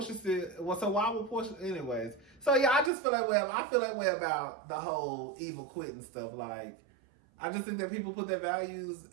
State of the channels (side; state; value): left; drops out; at 2.9 s